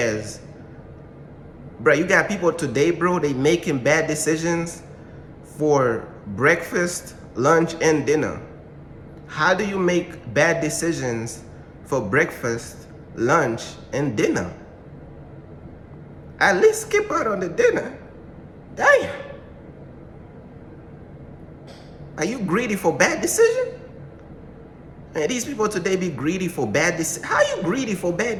bro, you got people today, bro, they making bad decisions for breakfast, lunch, and dinner. How do you make bad decisions for breakfast, lunch, and dinner? At least skip out on the dinner. Damn. Are you greedy for bad decision? Man, these people today be greedy for bad decisions. How you greedy for bad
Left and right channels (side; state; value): both; identical; correlation 1.00